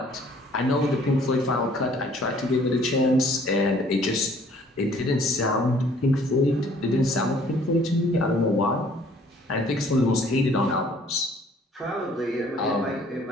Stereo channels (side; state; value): both; normal; correlation 0.57